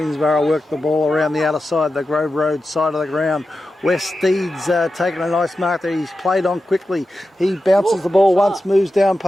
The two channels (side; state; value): both; normal; correlation 0.92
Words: work the ball around the outer side, the Grove Road side of the ground. West Steed's taking a nice mark there. He's played on quickly. He bounces the ball once, moves down